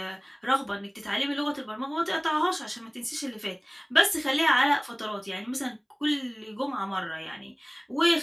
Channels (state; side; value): identical; both; correlation 1.00